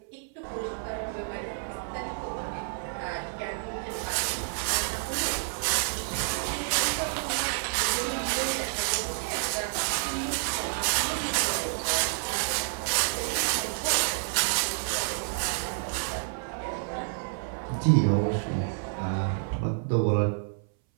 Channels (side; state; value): left; silent; 58 dB below the other